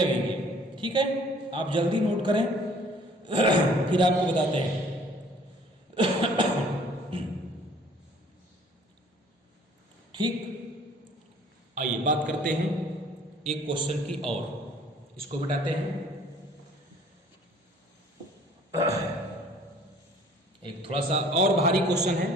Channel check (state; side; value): normal; both; correlation 0.54